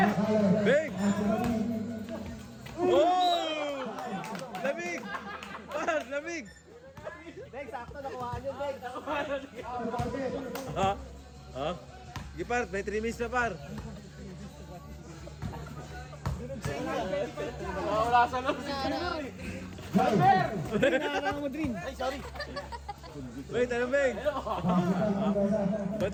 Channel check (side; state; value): both; identical; correlation 1.00